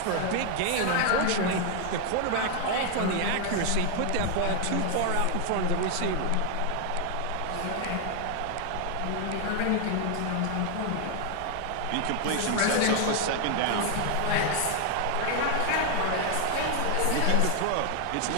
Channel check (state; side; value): different; both; correlation 0.00